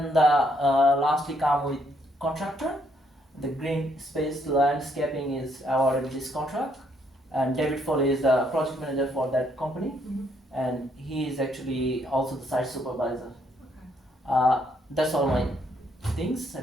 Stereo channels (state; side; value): normal; both; correlation 0.71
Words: the lastly come with contractor. The green space landscaping is awarded this contract, and David Foley is the project manager for that company, and he is actually also the site supervisor. That's all my things. I